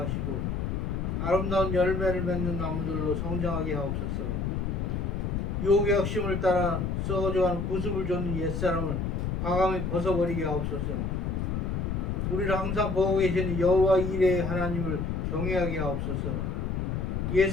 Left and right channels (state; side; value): noise; left; rumble, 1 dB below the sound